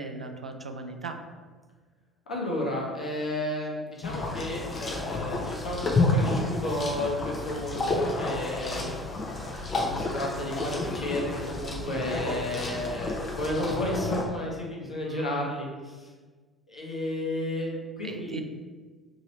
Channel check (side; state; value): both; normal; correlation 0.46